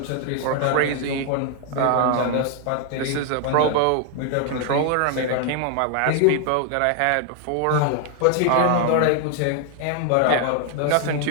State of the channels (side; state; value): both; different; correlation 0.00